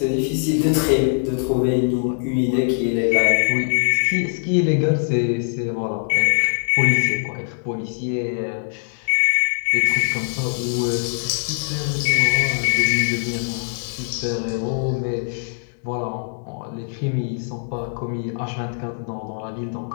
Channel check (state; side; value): silent; right; 61 dB below the other